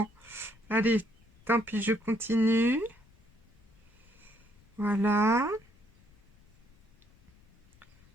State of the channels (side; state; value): left; noise; rumble, 28 dB below the sound